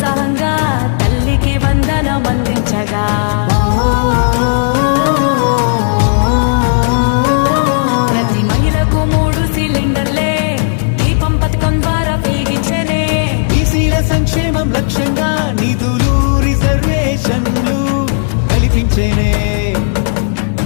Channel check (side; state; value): right; silent; digital silence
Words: తల్లికి వందనం అందించగా, ప్రతి మహిళకు 3 సిలిండర్లే దీపం పథకం ద్వారా వెలిగించనే. బీసీల సంక్షేమం లక్ష్యంగా నిధులు రిజర్వేషన్లు కల్పించేనే.